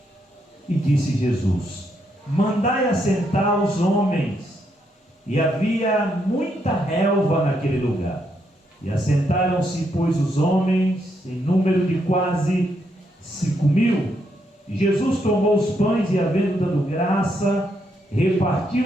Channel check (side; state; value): both; normal; correlation 0.77